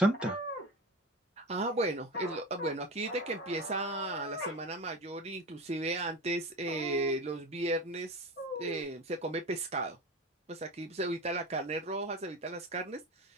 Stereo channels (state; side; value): normal; both; correlation 0.27